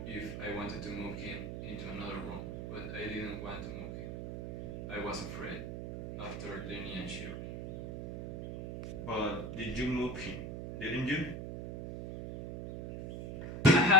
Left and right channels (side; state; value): right; noise; hum, 7 dB below the sound